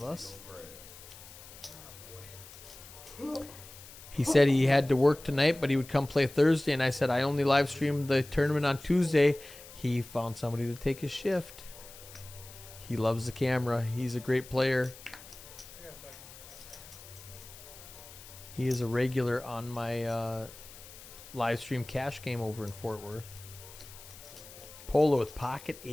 us. He said he had to work tonight, but he would come play Thursday, and I said I only live stream the tournament on Tuesday. He found somebody to take his shift. He loves the camera. He's a great player. He is a regular on my live stream cash game over in Fort Worth. Polo with pocket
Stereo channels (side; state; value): left; noise; hiss, 17 dB below the sound